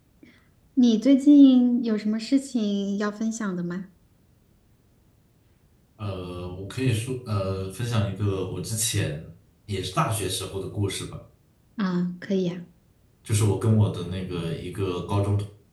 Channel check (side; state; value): both; identical; correlation 1.00